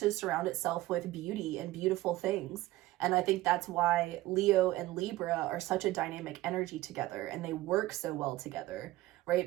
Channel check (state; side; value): quieter; left; 17.1 dB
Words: surround itself with beauty and beautiful things. And I think that's why Leo and Libra are such a dynamic energy together, and they work so well together,